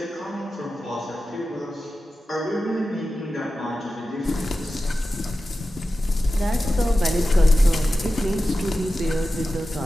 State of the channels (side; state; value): both; normal; correlation 0.93